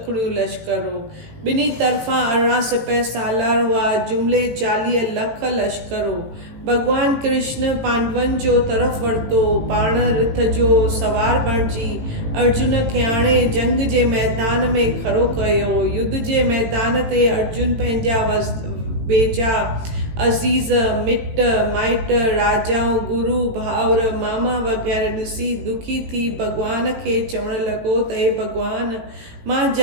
खुणियूं लश्कर हो। ॿिन्ही तरफ़ां 18 सिपह सालार हुआ, जुमिले 40 लख लश्कर हो। भॻवान कृष्ण पांडवनि जो तरफ़ वरितो, पाण रिथ जो सवार बणिजी अर्जुन खे आणे जंग जे मैदान में खड़ो कयो। युद्ध जे मैदान ते अर्जुन पंहिंजा बेजा अज़ीज़ मिट माइट राजाऊं गुरु भाउर मामा वग़ैरह ॾिसी दुखी थी भॻवान खे चवण लॻो त हे भॻवान मां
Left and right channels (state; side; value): late; left; 18 ms